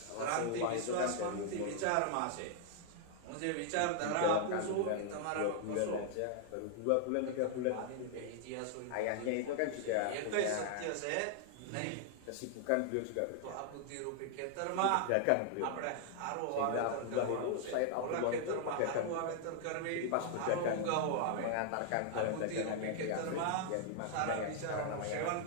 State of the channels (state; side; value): different; both; correlation 0.00